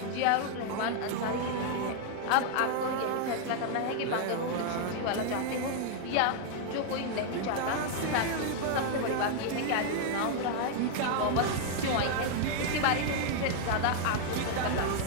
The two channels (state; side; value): different; both; correlation 0.00